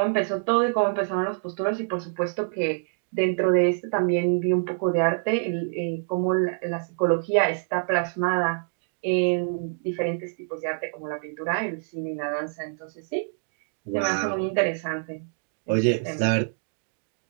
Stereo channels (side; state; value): left; silent; digital silence